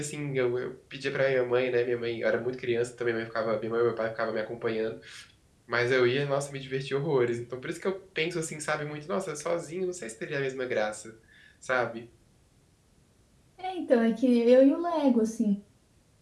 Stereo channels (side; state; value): both; identical; correlation 1.00